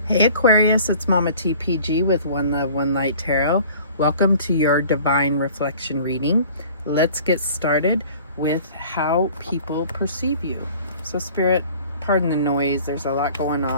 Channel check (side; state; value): both; inverted; correlation -0.48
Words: Hey Aquarius, it's Mama TPG with One Love, One Light Tarot. Welcome to your Divine Reflection reading. Let's get started with how people perceive you. So Spirit, pardon the noise, there's a lot going